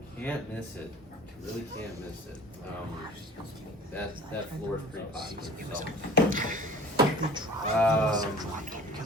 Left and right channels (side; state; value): both; normal; correlation 0.44